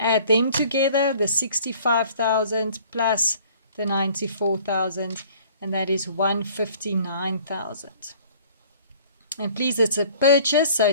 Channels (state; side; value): inverted; both; correlation -0.52